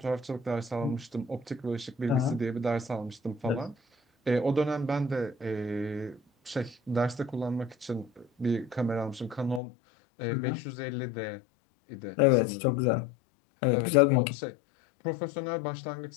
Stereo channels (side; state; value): right; drops out; at 9.6 s